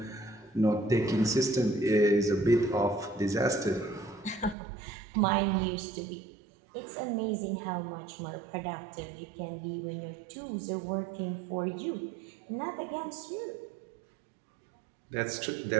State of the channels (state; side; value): drops out; left; at 4.5 s